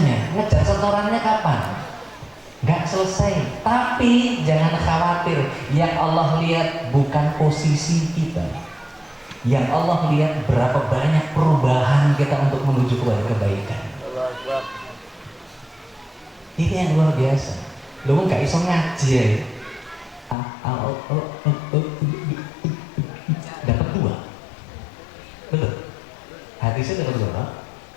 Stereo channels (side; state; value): right; drops out; at 20.4 s